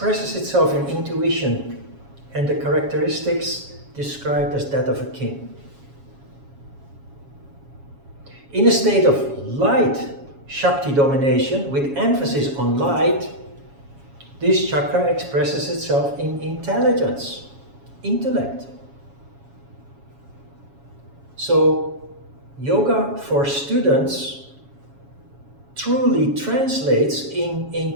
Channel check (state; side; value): late; left; 7.2 ms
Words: itself in intuition and the characteristics described as that of a king. In a state of light Shakti domination, with emphasis on light, This chakra expresses itself in intelligence, intellect. So, yoga for students truly translates in